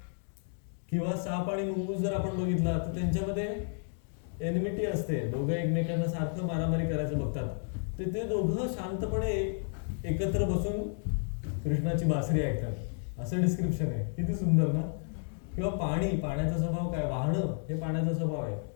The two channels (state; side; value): silent; right; 57 dB below the other